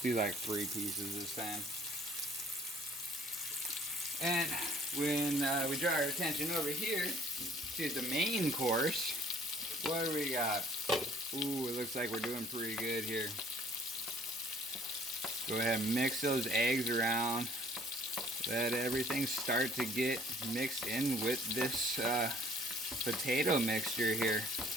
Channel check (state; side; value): normal; both; correlation 0.56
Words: do like 3 pieces this time. And when we draw our attention over here to the main course, what do we got? Ooh, it looks like we're doing pretty good here. Go ahead and mix those eggs around. Let everything start to get mixed in with this potato mixture here.